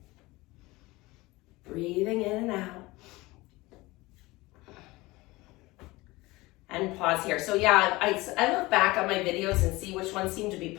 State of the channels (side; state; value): right; quieter; 21.1 dB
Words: pause here. So yeah, I look back on my videos and see which ones seem to be